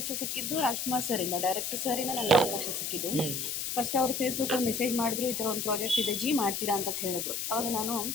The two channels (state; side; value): noise; left; hiss, 2 dB below the sound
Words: ಸಿಕ್ಕಿದ್ದು ರಾಜ್ಕುಮಾರ್ ಸರಿಂದ, ಡೈರೆಕ್ಟರ್ ಸರಿಂದ ನನಗೆ ಅವಕಾಶ ಸಿಕ್ಕಿದ್ದು. ಫಸ್ಟ್ ಅವರು ಫೇಸ್ಬುಕ್ಕಲ್ಲಿ ಮೆಸೇಜ್ ಮಾಡಿದ್ರು, ಈ ಥರ ಒಂದು ಪ್ರಾಜೆಕ್ಟ್ ಇದೆ ಜಿ, ಮಾಡ್ತೀರಾ ಅಂತ ಹೇಳಿದ್ರು. ಅವಾಗ ನಾನು